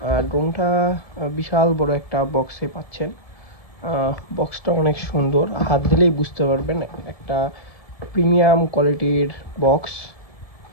ড্রোনটা বিশাল বড় একটা বক্সে পাচ্ছেন। বক্সটা অনেক সুন্দর, হাত দিলেই বুঝতে পারবেন একটা প্রিমিয়াম কোয়ালিটির বক্স।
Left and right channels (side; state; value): right; late; 1.7 ms